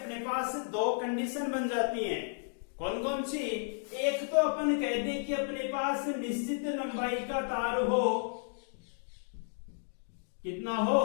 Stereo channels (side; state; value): right; silent; digital silence